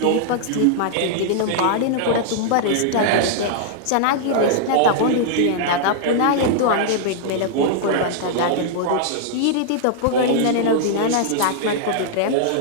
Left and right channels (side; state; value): both; different; correlation -0.01